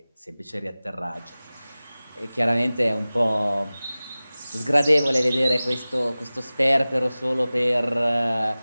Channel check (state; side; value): inverted; both; correlation -0.97